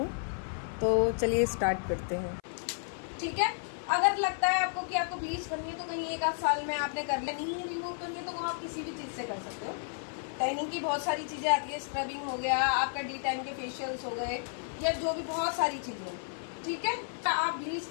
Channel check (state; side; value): silent; right; 56 dB below the other